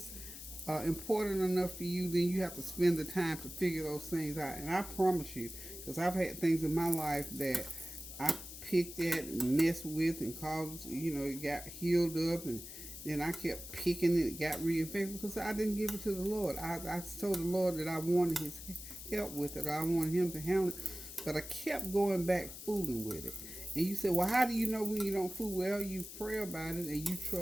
important enough to you, then you have to spend the time to figure those things out. And I promise you, because I've had things in my life that I picked at and messed with and caused, it got healed up, and then I kept picking it, got reinfected because I didn't give it to the Lord. I told the Lord that I wanted His help with it, or I wanted Him to handle it, but I kept going back fooling with it. And you say, well, how do you know when you don't fool? Well, you pray about it and you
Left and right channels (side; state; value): left; noise; hiss, 12 dB below the sound